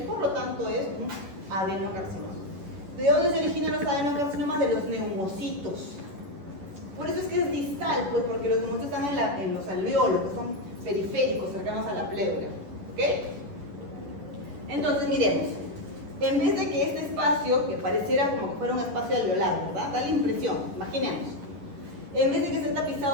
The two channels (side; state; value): left; late; 11 ms